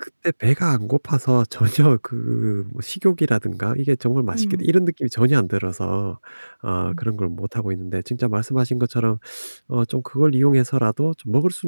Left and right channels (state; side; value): inverted; both; correlation -1.00